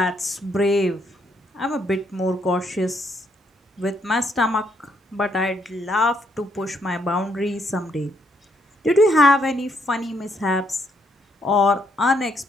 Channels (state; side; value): normal; both; correlation 0.73